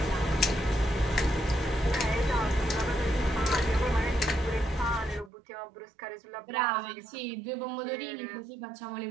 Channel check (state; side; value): drops out; left; at 5.3 s